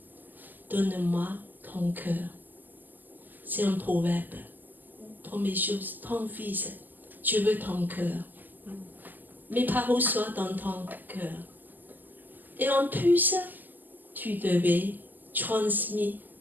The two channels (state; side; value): late; left; 0.086 ms